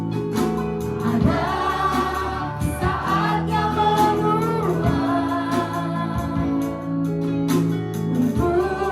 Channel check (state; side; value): identical; both; correlation 1.00